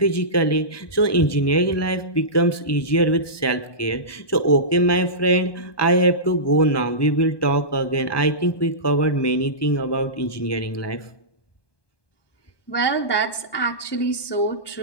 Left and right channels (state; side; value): late; right; 1.2 ms